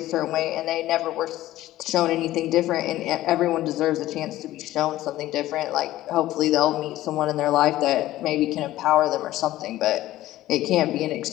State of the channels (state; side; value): quieter; right; 15.2 dB